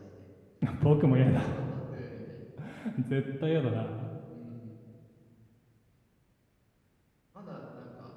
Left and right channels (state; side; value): identical; both; correlation 1.00